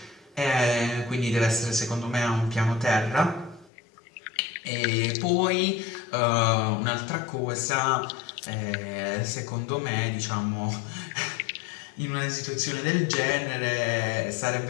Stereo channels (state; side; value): drops out; right; at 3.7 s